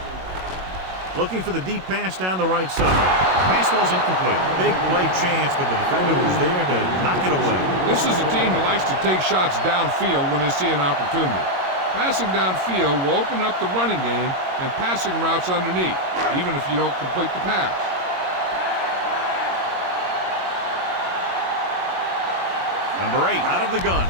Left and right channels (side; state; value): left; late; 22 ms